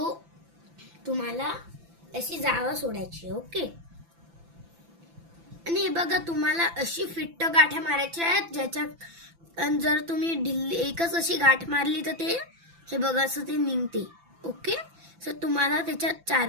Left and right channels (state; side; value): late; left; 5.9 ms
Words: तुम्हाला अशी जागा सोडायची. ओके. आणि हे बघा, तुम्हाला अशी फिट्ट गाठ्या मारायच्या आहेत ज्याच्यात जर तुम्ही ढिल्ली एकच अशी गाठ मारली तर ते हे बघा असं ते निघते. ओके. सो तुम्हाला त्याच्यात